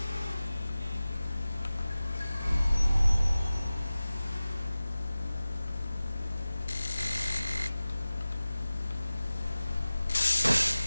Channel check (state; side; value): inverted; both; correlation -0.97